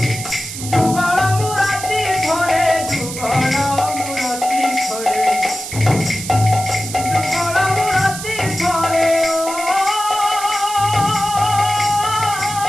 যুগল মুরাতি ধরে যুগল মুরাতি ধরে যুগল মুরাতি ধরে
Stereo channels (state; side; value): noise; right; hiss, 9 dB below the sound